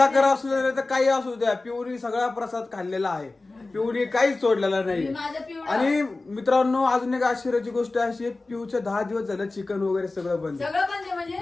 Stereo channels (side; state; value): right; quieter; 3.3 dB